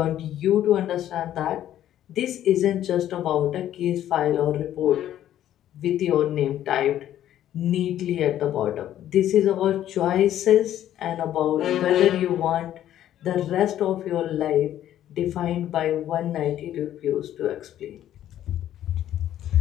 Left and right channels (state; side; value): quieter; right; 11.8 dB